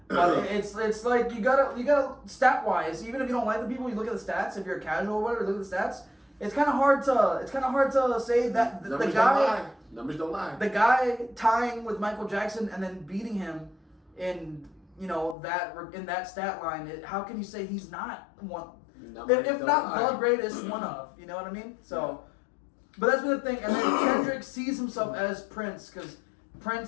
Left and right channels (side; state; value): right; drops out; at 15.4 s